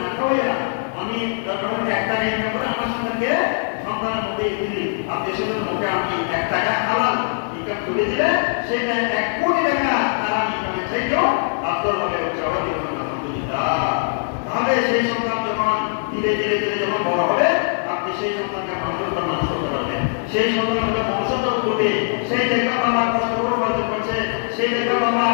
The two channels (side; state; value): right; silent; 55 dB below the other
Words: খাওয়াইয়া আমি 1 টাকা ইনকাম করে আমার সন্তানকে সন্তানের মধ্যে দিলি, আত্মীয়-স্বজনের মুখে আমি 1 টাকা হালাল ইনকাম করে দিলে সেটা 1 কোটি টাকা তারা ইনকামের চাইতেও আফদল হবে, সবাই বলবেন আলহামদুলিল্লাহ। তাহলে সেই সন্তান যখন ধীরে ধীরে ধীরে যখন বড় হবে, আপনি সেই সন্তানকে মানুষের মানুষ করতে পারবেন। সেই সন্তানগুলো ভবিষ্যৎ করবে, সেই দেখবে বাবা কষ্ট করে উপার্জন করছে, সেই দেখবে বাবা